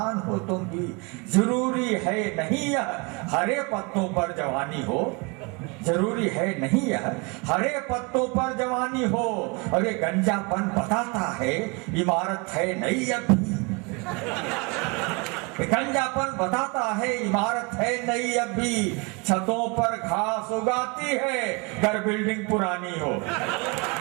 हो तुम भी। जरूरी है नहीं यह हरे पत्तों पर जवानी हो, जरूरी है नहीं यह हरे पत्तों पर जवानी हो। और ये गंजापन बताता है इमारत है नई अभी, गंजापन बताता है इमारत है नई अभी। छतों पर घास उगाती है घर बिल्डिंग पुरानी हो।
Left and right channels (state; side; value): quieter; left; 29.4 dB